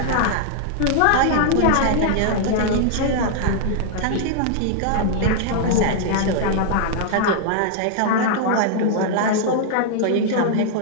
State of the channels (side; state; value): both; different; correlation -0.01